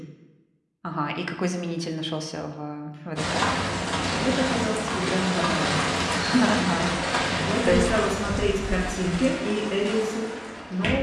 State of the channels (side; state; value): both; identical; correlation 1.00